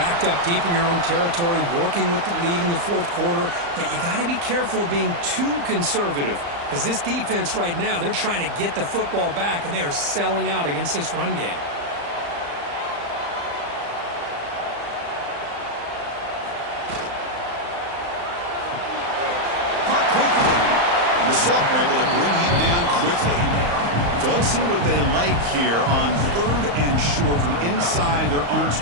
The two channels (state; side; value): late; left; 35 ms